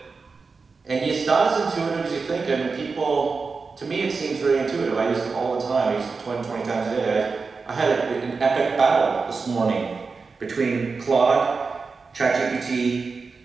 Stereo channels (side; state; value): left; quieter; 4.6 dB